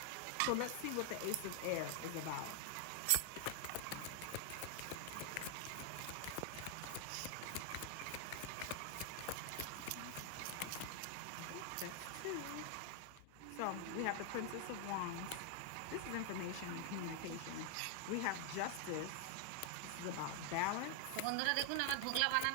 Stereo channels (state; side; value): different; both; correlation 0.00